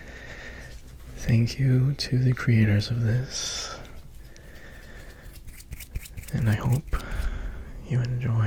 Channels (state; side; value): identical; both; correlation 1.00